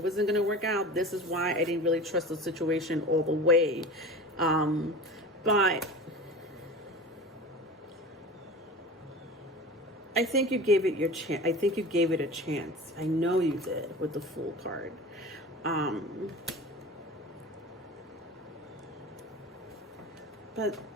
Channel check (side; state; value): both; normal; correlation 0.34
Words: wasn't going to work out. This is why I didn't really trust the situation all the way. But I think you gave it your chance. I think you gave it a chance. I know you did with the Fool card. But